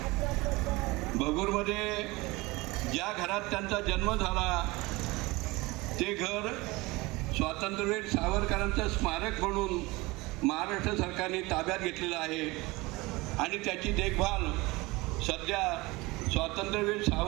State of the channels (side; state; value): left; quieter; 22.4 dB